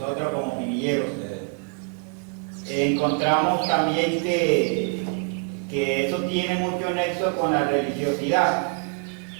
como pinilleros, encontramos también que eso tiene mucho nexo con la religiosidad.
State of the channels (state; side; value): quieter; left; 38.9 dB